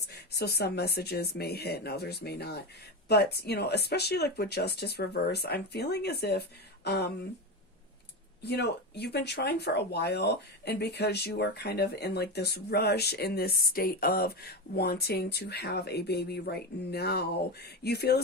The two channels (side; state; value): both; normal; correlation 0.18